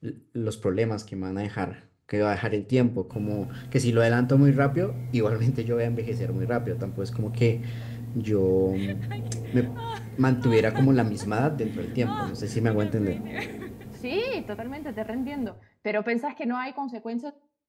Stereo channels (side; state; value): both; identical; correlation 1.00